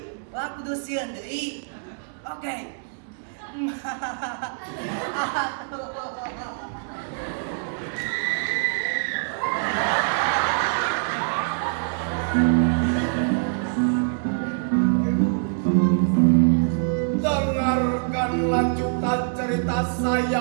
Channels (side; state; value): left; silent; digital silence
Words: aku dosieun deui. Oke. Dengarkan lanjutan cerita